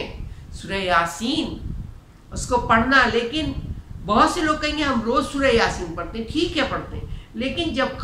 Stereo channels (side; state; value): both; identical; correlation 1.00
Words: سورہ یاسین اس کو پڑھنا، لیکن بہت سے لوگ کہیں گے ہم روز سورہ یاسین پڑھتے ہیں، ٹھیک ہے پڑھتے ہیں، لیکن جب